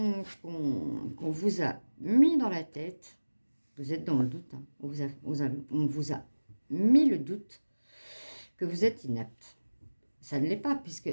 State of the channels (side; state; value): both; inverted; correlation -1.00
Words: vous a mis dans la tête. Vous êtes dans le doute, hein. On vous a mis le doute que vous êtes inapte. Ça ne l'est pas,